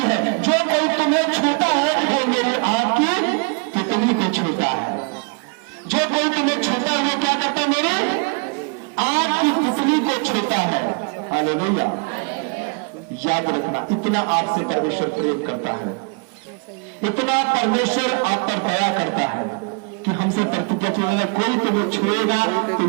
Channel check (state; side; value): quieter; left; 35.2 dB